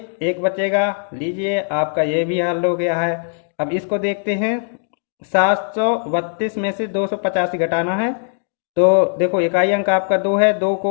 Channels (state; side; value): silent; right; digital silence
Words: 1 बचेगा। लीजिए, आपका ये भी हल हो गया है। अब इसको देखते हैं, 732 में से 285 घटाना है। तो देखो इकाई अंक आपका 2 है, 2